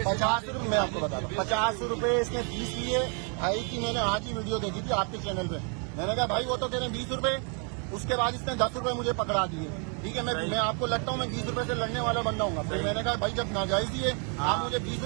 50 रुपए मैं आपको बता रहा हूँ, 50 रुपए इसने फीस लिए। भाई की मैंने आज ही वीडियो देखी थी आपके चैनल पे। मैंने कहा भाई वो तो कह रहे हैं 20 रुपए। उसके बाद इसने 10 रुपए मुझे पकड़ा दिए। ठीक है, मैं आपको लगता हूँ मैं 20 रुपए से लड़ने वाला बंदा हूँ। फिर मैंने कहा भाई जब नाजायज दिए आप मुझे 20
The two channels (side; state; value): left; quieter; 39.0 dB